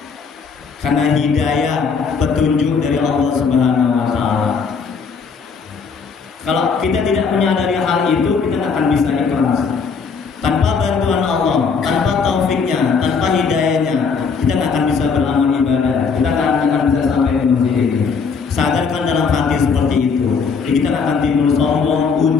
karena hidayah, petunjuk dari Allah Subhanahu wa ta'ala. Kalau kita tidak menyadari hal itu, kita tidak akan bisa ikhlas. Tanpa bantuan Allah, tanpa taufiknya, tanpa hidayahnya, kita tidak akan bisa beramal ibadah. Kita akan bisa sampai ke masjid ini. Sadarkan dalam hati seperti itu. Jadi kita akan timbul sombong,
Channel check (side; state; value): right; quieter; 5.5 dB